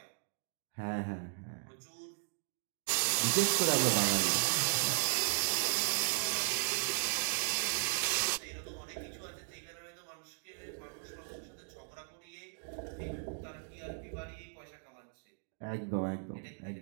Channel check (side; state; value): left; silent; 54 dB below the other